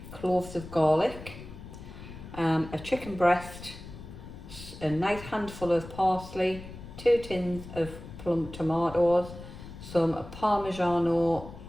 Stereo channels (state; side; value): noise; left; rumble, 14 dB below the sound